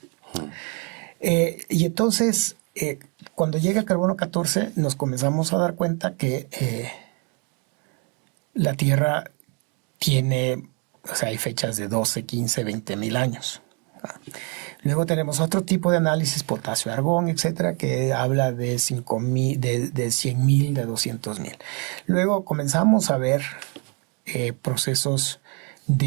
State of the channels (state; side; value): quieter; left; 35.0 dB